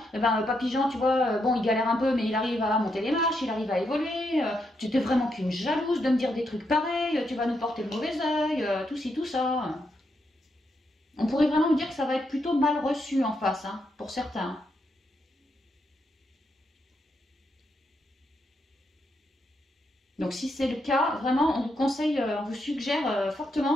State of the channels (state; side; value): normal; both; correlation 0.80